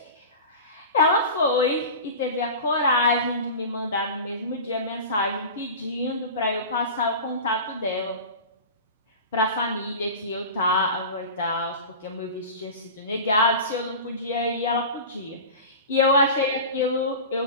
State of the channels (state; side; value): inverted; both; correlation -0.32